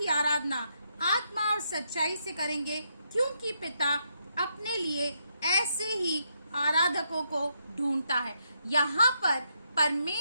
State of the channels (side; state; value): both; inverted; correlation -0.78